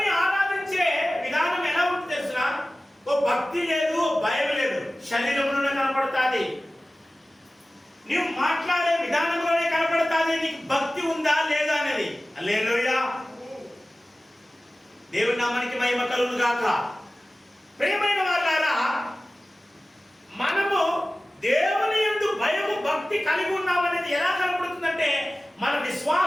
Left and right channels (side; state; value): both; normal; correlation 0.96